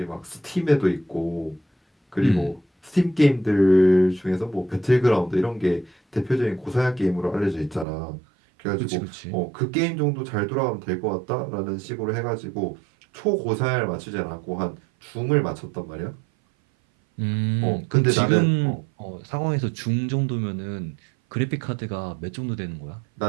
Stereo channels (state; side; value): drops out; left; at 7.9 s